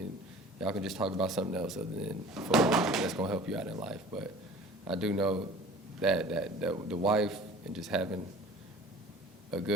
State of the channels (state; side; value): normal; both; correlation 0.44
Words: y'all can just talk about something else other than football that's going to help you out in life. But I do know that the wife and just having a